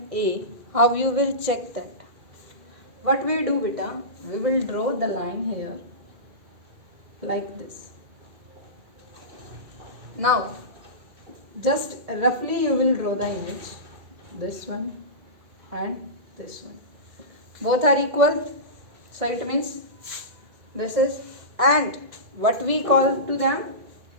A, how you will check that? What we do, beta? We will draw the line here like this. Now just roughly you will draw the image. This one and this one. Both are equal. So it means this is, and what we call to them?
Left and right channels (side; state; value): left; late; 2.0 ms